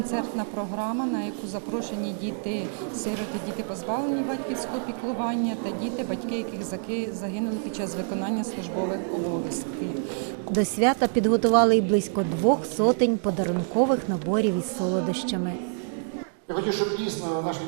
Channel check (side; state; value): left; silent; 60 dB below the other